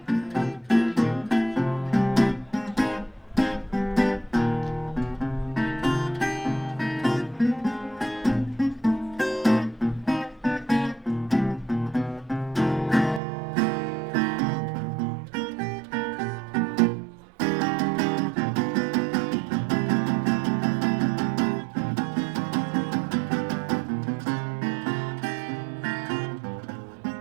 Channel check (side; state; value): left; drops out; at 13.2 s